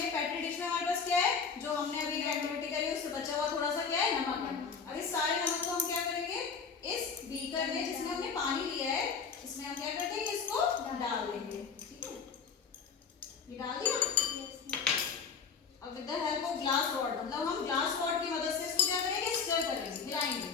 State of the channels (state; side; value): quieter; right; 5.8 dB